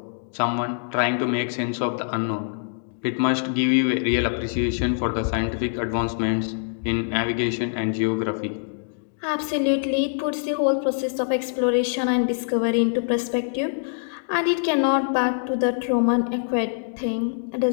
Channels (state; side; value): silent; right; digital silence